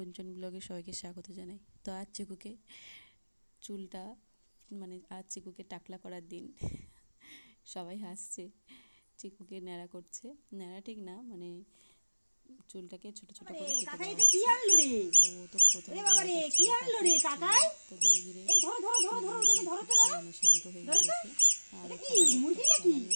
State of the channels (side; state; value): both; inverted; correlation -1.00